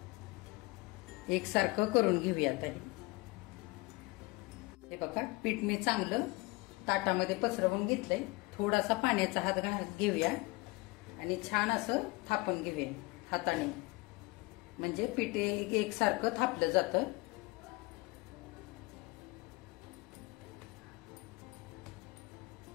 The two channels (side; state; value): right; quieter; 23.6 dB